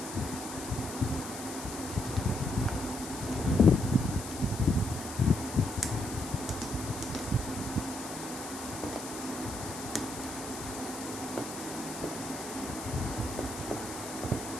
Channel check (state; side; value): noise; left; hiss, 10 dB below the sound